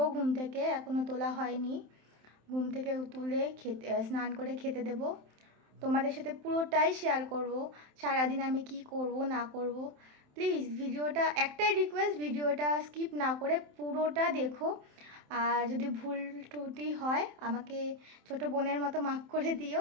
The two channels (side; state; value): left; late; 27 ms